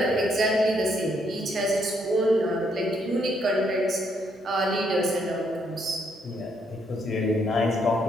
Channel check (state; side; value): normal; both; correlation 0.73